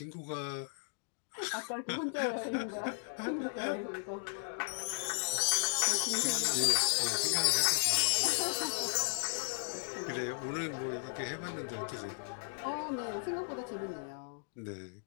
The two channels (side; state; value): right; silent; digital silence